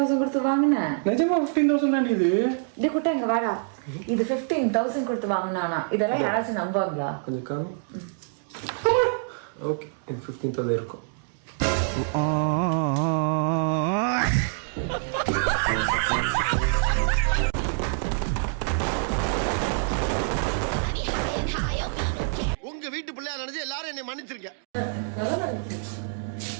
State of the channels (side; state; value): left; silent; digital silence